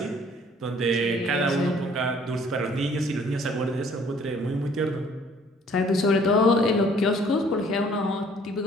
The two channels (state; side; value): normal; both; correlation 0.57